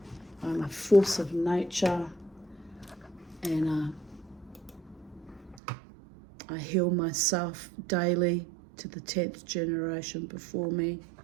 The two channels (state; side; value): drops out; left; at 5.6 s